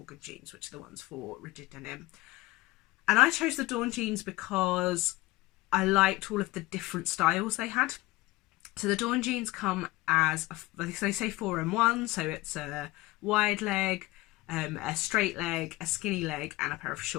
jeans, which are the ones for rigid denim. And I chose the Dawn jeans because I liked all of the different styles they had. So the Dawn jeans come as, they say 4-in-1, so it's a wide leg, a straight leg, a skinny leg, and a pair of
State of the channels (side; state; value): right; quieter; 19.8 dB